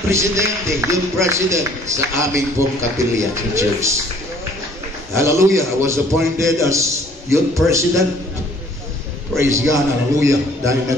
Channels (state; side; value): normal; both; correlation 0.57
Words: presidente, yung president sa aming pong kapilya sa church. Hallelujah. I was appointed as youth president. Praise God. Hallelujah. Dahil